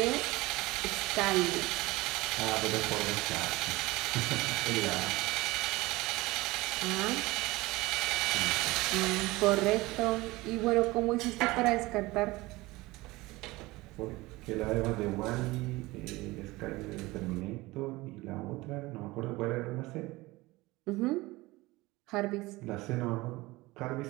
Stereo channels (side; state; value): left; quieter; 20.8 dB